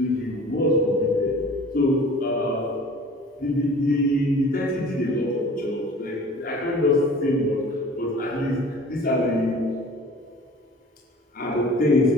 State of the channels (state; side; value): normal; both; correlation 0.45